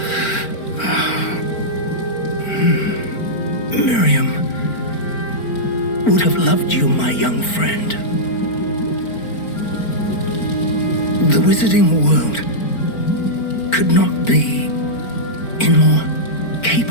Miriam would have loved you, my young friend. The wizarding world could not be in more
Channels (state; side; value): late; right; 4.4 ms